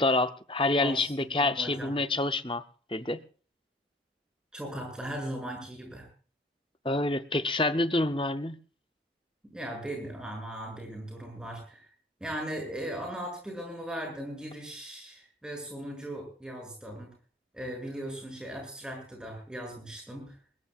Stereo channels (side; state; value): both; normal; correlation 0.49